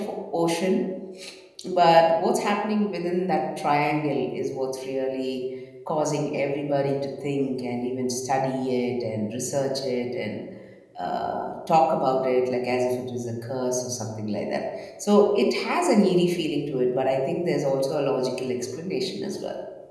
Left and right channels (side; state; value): both; identical; correlation 1.00